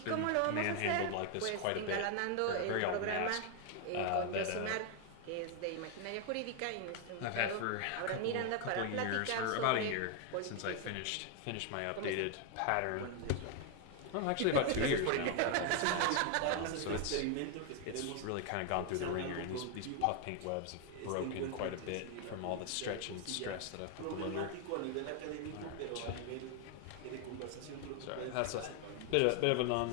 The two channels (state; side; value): different; both; correlation 0.01